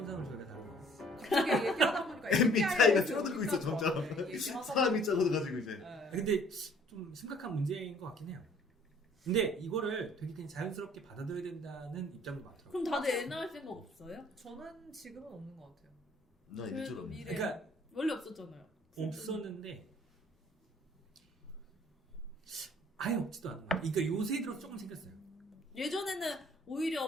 저희가 다루고 갑자기 얘기하다 보니까 MBTI가 줄어들고 있어 점점. 얘기하다 사람이 적어가지고 이제. 네. 근데 좀 심각한 문제인 것 같긴 해요. 근데 이거를 되게 그냥 자연스럽게 받아들여야 된다는 입장도 많더라고요. 그럼 다들 애 낳을 생각 없어요? 저는 지금은 없는 것 같아요. 나 이제처럼. 미래. 그러니까 원래 없었잖아요. 없었는데 아예 없지도 않은 거예요. 그러니까 요새 들어서 조금 생겼어요. 예전에는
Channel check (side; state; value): both; normal; correlation 0.57